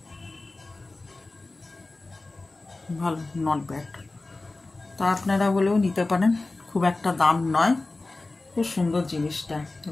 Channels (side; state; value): right; quieter; 3.2 dB